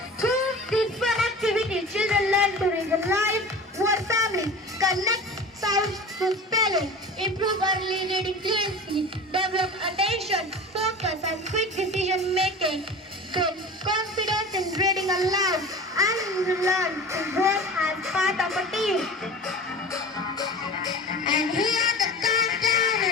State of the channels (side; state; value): both; normal; correlation 0.35